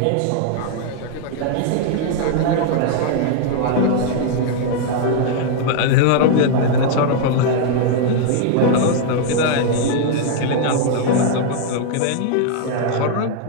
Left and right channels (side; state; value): both; different; correlation 0.00